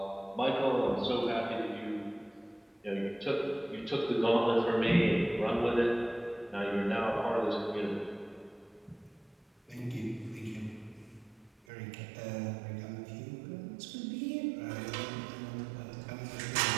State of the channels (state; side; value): drops out; left; at 11.6 s